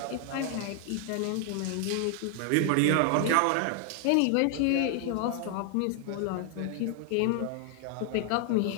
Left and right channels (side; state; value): both; different; correlation 0.00